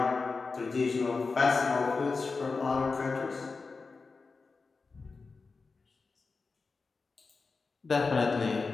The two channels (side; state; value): right; quieter; 4.3 dB